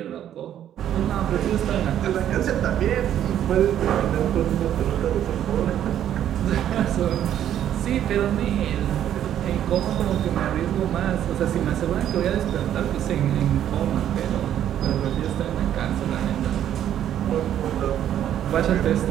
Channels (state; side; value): quieter; left; 10.7 dB